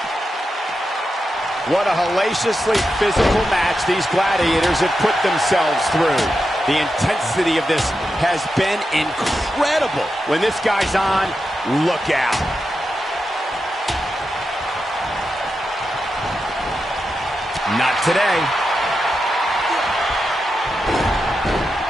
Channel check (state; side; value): normal; both; correlation 0.88